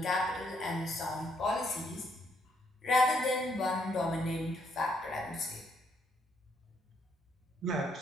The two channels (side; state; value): both; normal; correlation 0.72